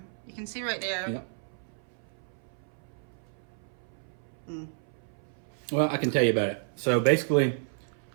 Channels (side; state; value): left; silent; 57 dB below the other